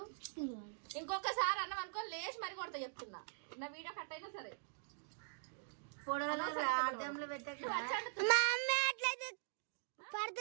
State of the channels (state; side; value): silent; left; digital silence